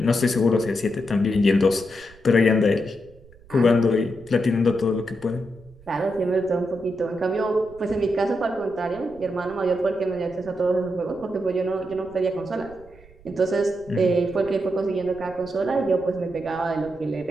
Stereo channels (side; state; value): right; noise; rumble, 24 dB below the sound